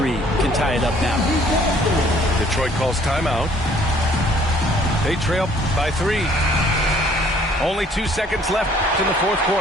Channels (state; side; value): normal; both; correlation 0.59